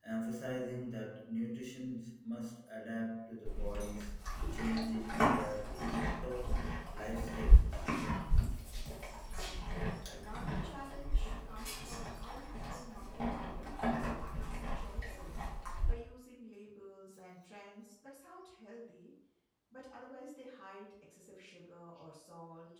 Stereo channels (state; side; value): identical; both; correlation 1.00